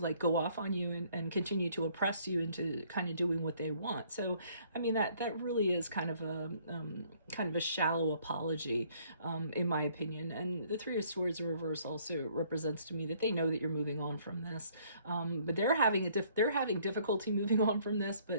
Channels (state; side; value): inverted; both; correlation -0.62